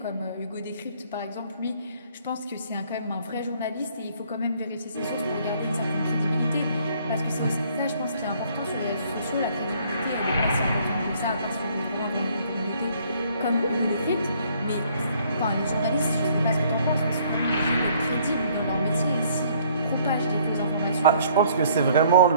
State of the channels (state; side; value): inverted; both; correlation -0.61